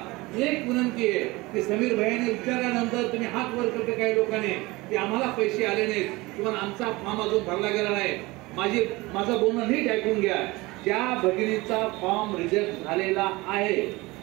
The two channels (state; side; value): quieter; left; 22.0 dB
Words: एक विनंती आहे की समीर भाईने विचारल्यानंतर तुम्ही हात वर करते काही लोकांनी की आम्हाला पैसे आले नाहीत किंवा आमचा फॉर्म अजून भरला गेला नाही. माझं बोलणं नीट ऐकून घ्या. ज्या भगिनीचा फॉर्म रिजेक्ट झालेला आहे,